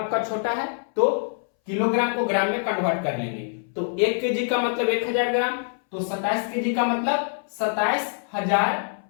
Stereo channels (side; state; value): right; silent; 62 dB below the other